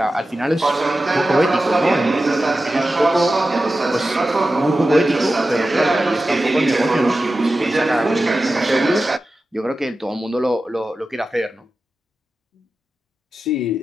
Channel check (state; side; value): normal; both; correlation 0.93